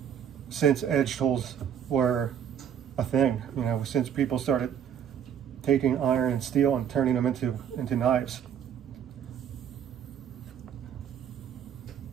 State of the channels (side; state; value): left; quieter; 8.7 dB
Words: since edge tools were a thing. Since people started taking iron and steel and turning them into knives.